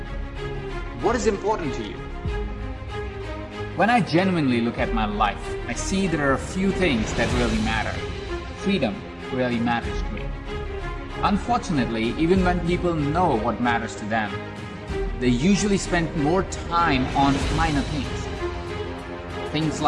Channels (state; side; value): identical; both; correlation 1.00